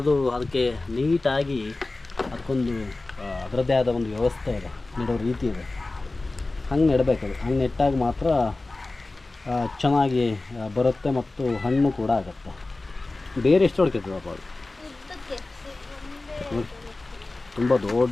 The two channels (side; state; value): right; quieter; 3.2 dB